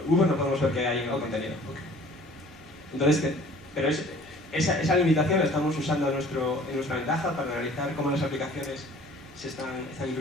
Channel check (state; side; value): normal; both; correlation 0.51